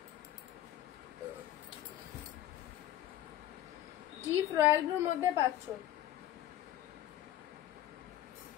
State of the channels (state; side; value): quieter; right; 12.8 dB